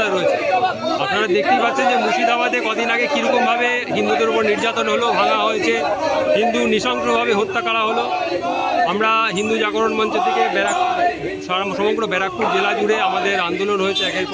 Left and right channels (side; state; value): both; identical; correlation 1.00